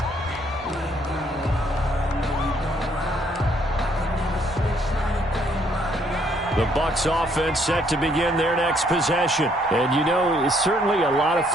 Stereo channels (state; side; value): normal; both; correlation 0.67